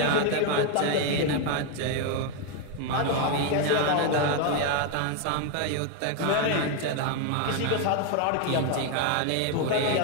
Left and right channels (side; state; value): both; different; correlation 0.01